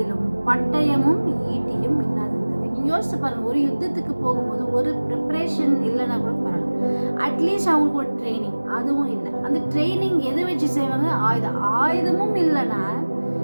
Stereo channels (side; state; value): both; inverted; correlation -1.00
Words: பட்டயமும் ஈட்டியும் இல்லாதிருந்தது. நீங்கள் யோசிச்சு பாருங்கள், ஒரு யுத்தத்துக்கு போகும்போது ஒரு ப்ரிப்ரேஷன் இல்லைன்னா கூட பரவாயில்ல, அட்லீஸ்ட் அவங்களுக்கு ஒரு ட்ரைனிங், அதுவும் இல்லை. அந்த ட்ரைனிங் எதை வச்சு செய்வாங்க? ஆயுதமும் இல்லைன்னா